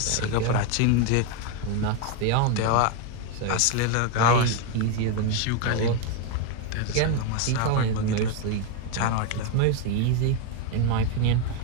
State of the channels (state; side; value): different; both; correlation 0.01